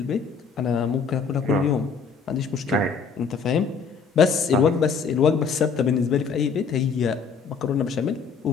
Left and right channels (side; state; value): right; quieter; 5.6 dB